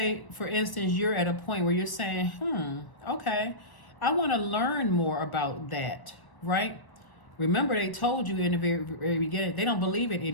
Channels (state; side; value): late; right; 1.0 ms